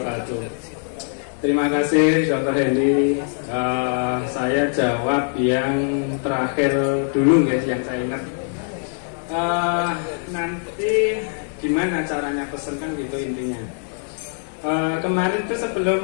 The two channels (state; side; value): silent; right; 58 dB below the other